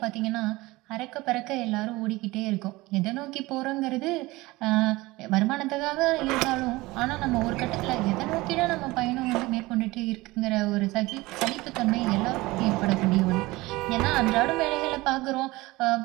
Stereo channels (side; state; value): left; quieter; 20.6 dB